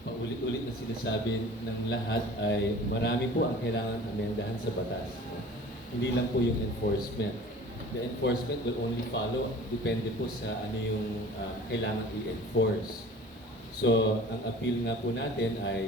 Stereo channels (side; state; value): both; normal; correlation 0.43